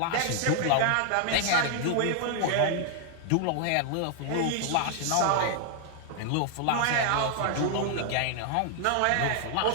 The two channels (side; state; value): both; different; correlation 0.00